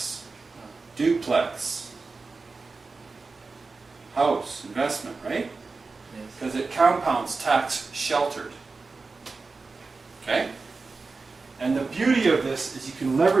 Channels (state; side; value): quieter; left; 4.1 dB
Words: duplex, house, investment, right? Yes. Because it compounds tax sheltered. Okay? And the beauty of this is you can